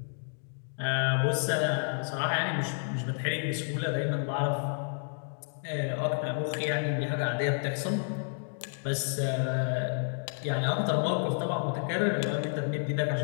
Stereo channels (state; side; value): silent; right; 58 dB below the other